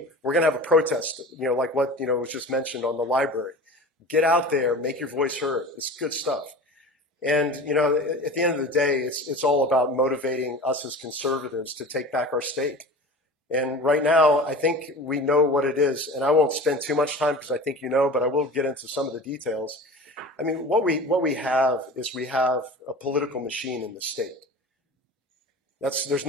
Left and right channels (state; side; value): normal; both; correlation 0.36